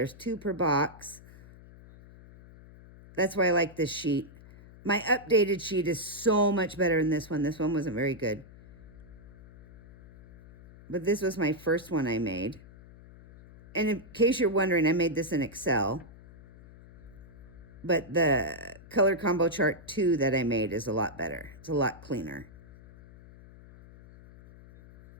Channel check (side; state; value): left; noise; hum, 20 dB below the sound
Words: 2 per box. That's why I like this sheet. My updated sheet is so much better than this one. This one wasn't very good. But this was my first one I made. And in case you're wondering, I made this in Excel. But the color combo chart 2 that I made is a lot better. It's a lot cleaner.